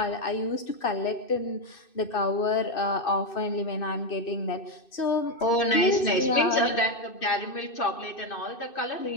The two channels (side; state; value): right; late; 2.6 ms